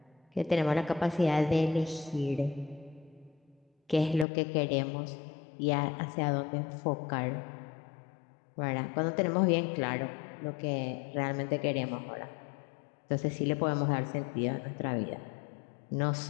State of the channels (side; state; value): right; drops out; at 4.2 s